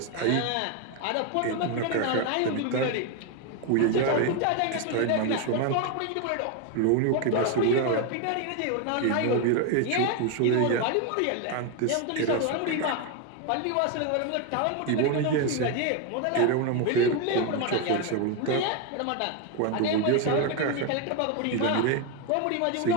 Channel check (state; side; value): different; both; correlation 0.02